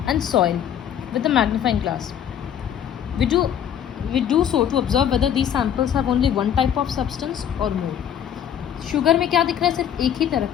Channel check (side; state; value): right; quieter; 9.4 dB